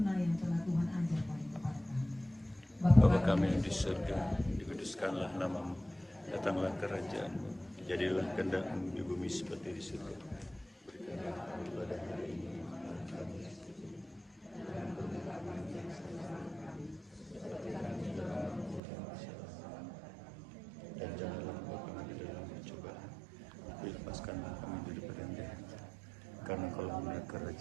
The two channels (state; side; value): drops out; left; at 18.8 s